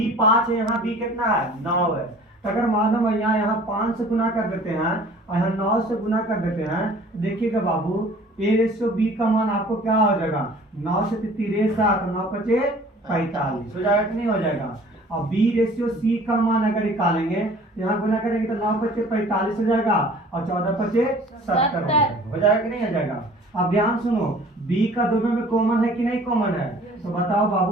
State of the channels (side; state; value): both; normal; correlation 0.50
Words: 5 है, यहाँ बी कितना है 9 है। तो अगर मानो यहाँ 5 से गुना कर देते हैं और यहाँ 9 से गुना कर देते हैं, देखिएगा बाबू a/b का मान आपको क्या हो जाएगा 9 से 3 7 9 5 45 हो जाएगा कि नहीं हो जाएगा। और b/c का मान अगर निकालेंगे यहाँ गुना करेंगे तो 9 5 45 हो जाएगा और 14 5 70 हो जाएगा कि नहीं हो जाएगा। अब ध्यान सुनो, b का दोनों में कॉमन है कि नहीं कॉमन है, तो बताओ